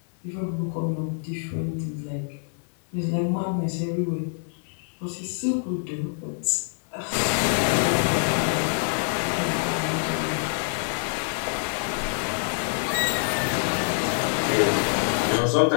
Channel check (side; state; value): right; silent; digital silence